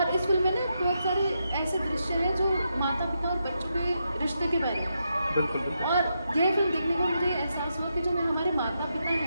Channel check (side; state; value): both; inverted; correlation -0.83